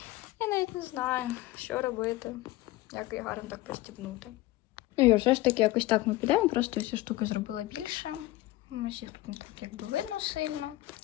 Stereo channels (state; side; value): quieter; right; 17.9 dB